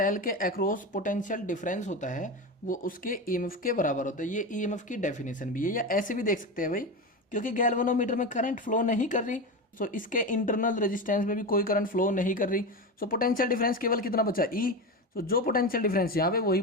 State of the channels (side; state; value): both; normal; correlation 0.20